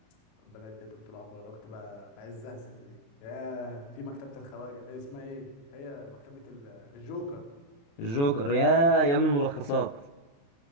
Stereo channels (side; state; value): right; late; 35 ms